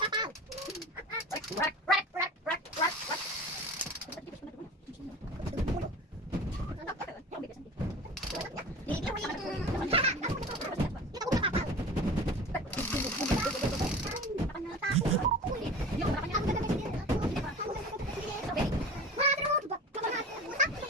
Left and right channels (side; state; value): both; normal; correlation 0.37